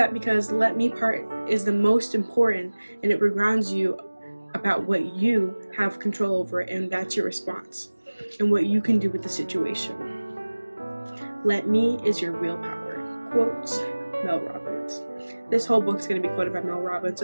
because the let me part is the most important and it regrounds you about what you have control over and that's your response and what you can do with the situation. Let me is your real power. Quotes, Mel Robbins. This whole book's going to be quoted by Mel Robbins,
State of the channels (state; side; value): inverted; both; correlation -1.00